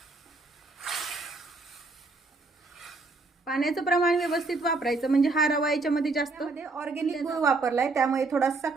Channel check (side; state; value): left; quieter; 3.5 dB